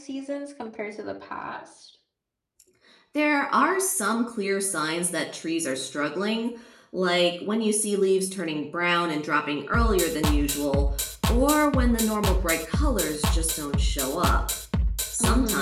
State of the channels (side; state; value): both; identical; correlation 1.00